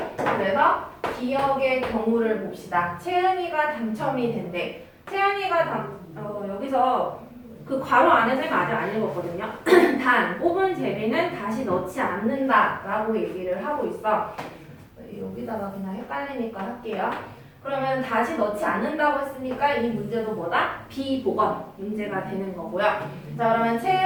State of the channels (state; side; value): identical; both; correlation 1.00